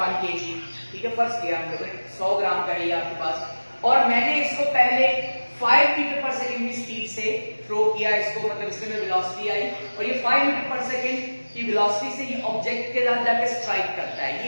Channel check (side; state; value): both; inverted; correlation -1.00